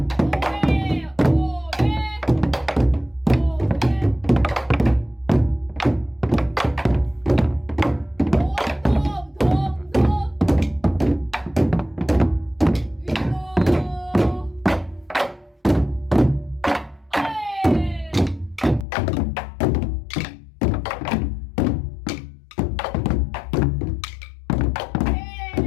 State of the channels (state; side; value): drops out; right; at 18.9 s